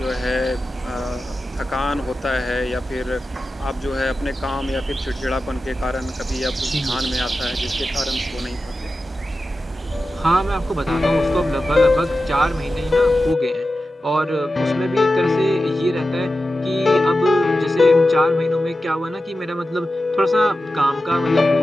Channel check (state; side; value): normal; both; correlation 0.93